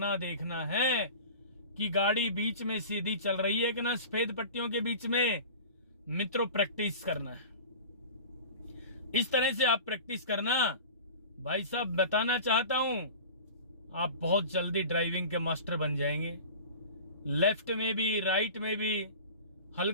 देखना है कि गाड़ी बीच में सीधी चल रही है कि ना, सफेद पट्टियों के बीच में। मित्रों, प्रैक्टिस करना है, इस तरह से आप प्रैक्टिस करना। भाई साहब, बताना चाहता हूं, आप बहुत जल्दी ड्राइविंग के मास्टर बन जाएंगे। लेफ्ट में भी राइट में भी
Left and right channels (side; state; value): both; inverted; correlation -0.37